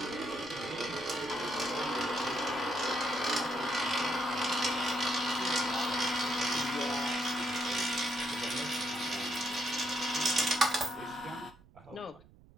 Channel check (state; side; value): noise; right; rumble, 25 dB below the sound